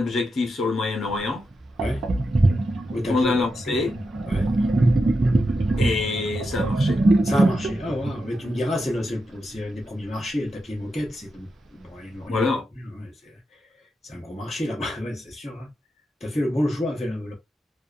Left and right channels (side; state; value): both; normal; correlation 0.87